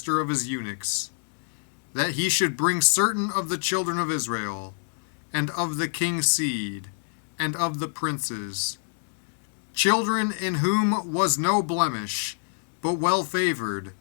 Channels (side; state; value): right; silent; 60 dB below the other